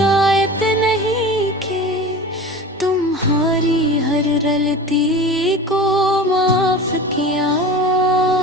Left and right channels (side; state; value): both; normal; correlation 0.34